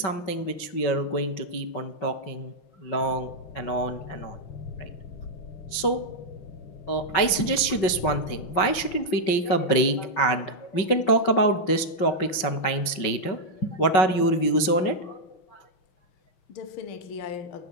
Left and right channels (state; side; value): late; right; 5.4 ms